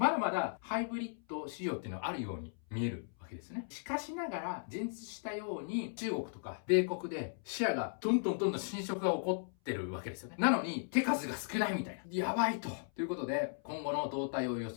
だまだハイブリッド市場っていうのはあるように見えるわけですね。しかしながら、前述したように中国とか米国でシェアがどんどん侵食が起こってるわけですよね。なのに手数が少ないみたいな。やばいと。ということで、今後の動態を予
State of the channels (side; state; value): right; silent; 53 dB below the other